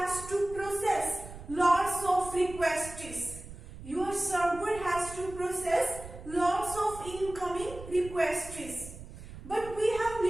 to process lots of requests. Your server has to process lots of incoming requests. But we have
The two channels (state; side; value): noise; right; rumble, 14 dB below the sound